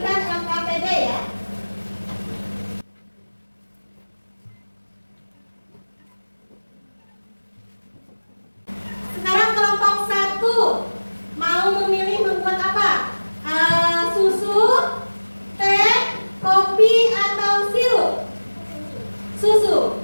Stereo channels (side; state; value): both; inverted; correlation -1.00